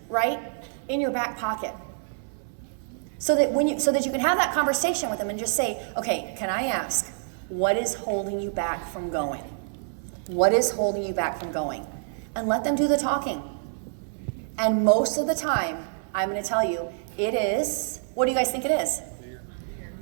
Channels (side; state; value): left; silent; 60 dB below the other